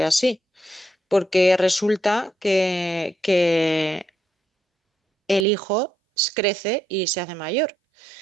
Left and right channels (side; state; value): left; drops out; at 5.5 s